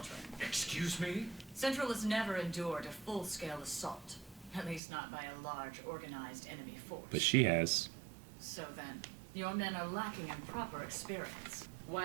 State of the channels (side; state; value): left; drops out; at 4.8 s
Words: Excuse me? Central has never endured a full-scale assault. At least not by a large, organized enemy force. But she has. So then, your men are lacking in proper experience. Why